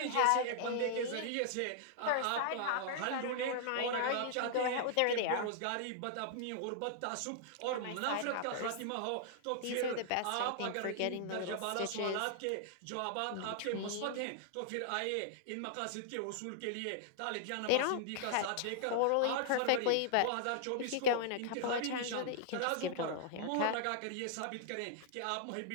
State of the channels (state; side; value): different; both; correlation -0.01